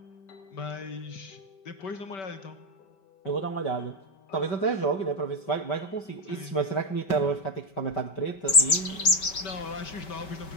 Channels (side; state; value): right; late; 5.2 ms